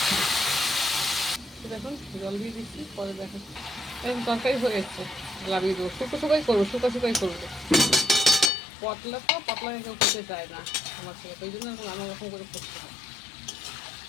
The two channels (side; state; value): right; drops out; at 8.5 s